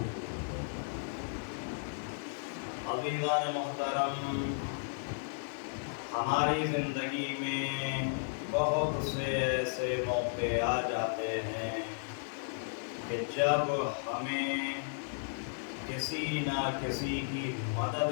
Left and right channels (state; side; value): silent; right; digital silence